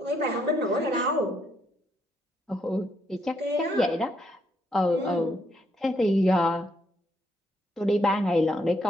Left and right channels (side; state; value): both; normal; correlation 0.74